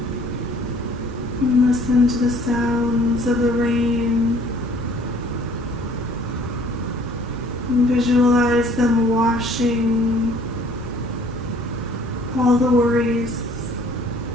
And listen to the sounds of the rain. And visualize them washing all the worries,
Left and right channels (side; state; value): both; normal; correlation 0.56